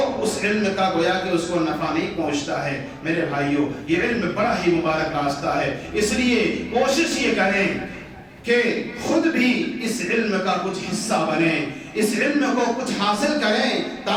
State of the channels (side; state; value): both; identical; correlation 1.00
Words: اس علم کا گویا کہ اس کو نفع نہیں پہنچتا ہے. میرے بھائیوں یہ علم بڑا ہی مبارک راستہ ہے. اس لیے کوشش یہ کریں کہ خود بھی اس علم کا کچھ حصہ بنیں, اس علم کو کچھ حاصل کریں